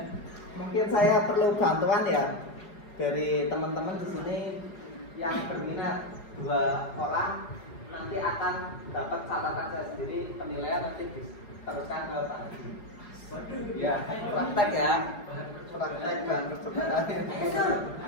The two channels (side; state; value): right; late; 4.7 ms